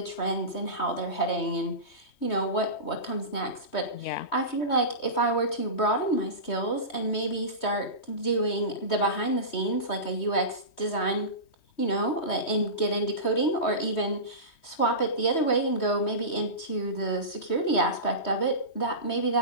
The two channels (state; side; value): late; right; 3.2 ms